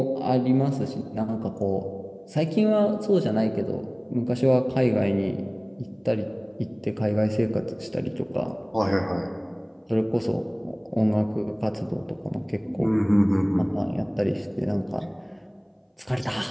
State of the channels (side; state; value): both; identical; correlation 1.00